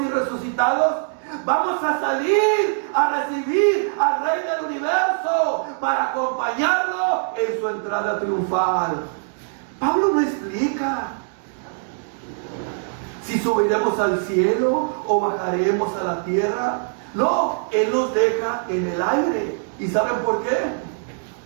y resucitados, vamos a salir a recibir al Rey del Universo para acompañarlo en su entrada triunfal. Pablo no explica si subiremos al cielo o bajaremos a la tierra. No, Él nos deja en el aire. ¿Y saben por qué?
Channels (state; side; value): silent; left; digital silence